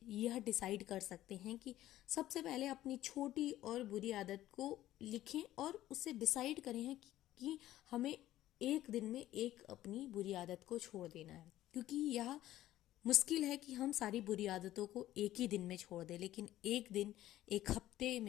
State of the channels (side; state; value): right; quieter; 14.1 dB